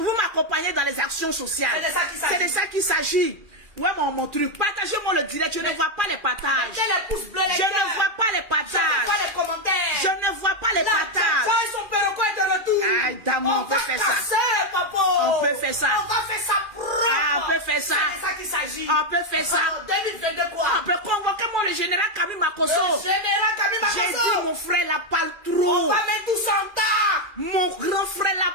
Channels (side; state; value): left; late; 2.4 ms